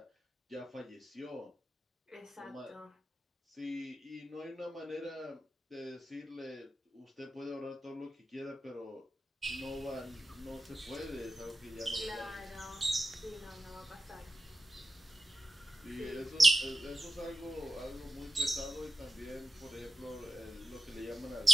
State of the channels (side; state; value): both; normal; correlation 0.91